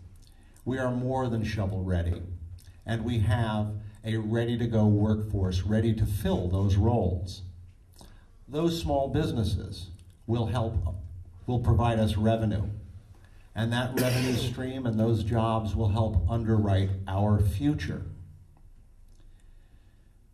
We are more than shovel ready, and we have a ready-to-go workforce ready to fill those roles. Those small businesses will provide us revenue, and that revenue stream and those jobs will help underwrite our future.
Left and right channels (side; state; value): both; identical; correlation 1.00